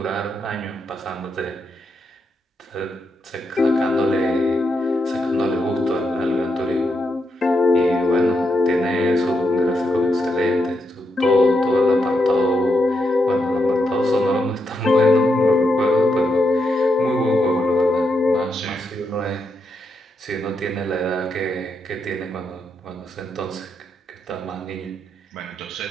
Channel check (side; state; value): both; normal; correlation 0.82